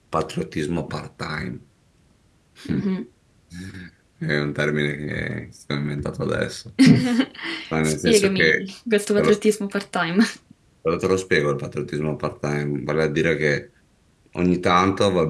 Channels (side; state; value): both; identical; correlation 1.00